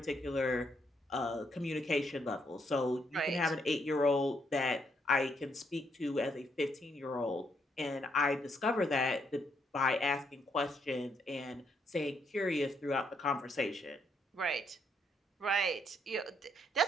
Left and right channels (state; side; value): normal; both; correlation 0.74